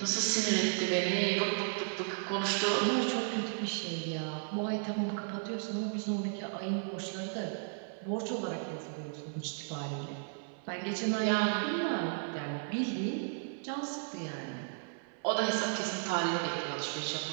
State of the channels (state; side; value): silent; left; 55 dB below the other